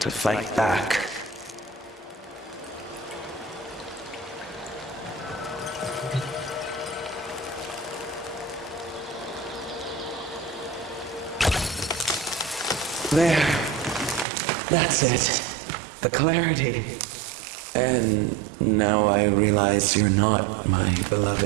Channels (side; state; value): left; drops out; at 14.2 s